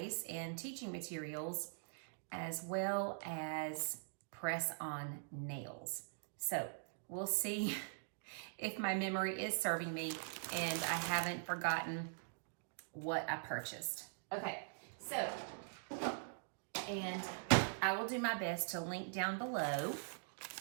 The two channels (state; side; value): silent; left; digital silence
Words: and teaching materials, as well as press-on nails. So we'll see if my memory is serving me and I haven't forgotten what I purchased. Okay, so, and I will do my best to link down below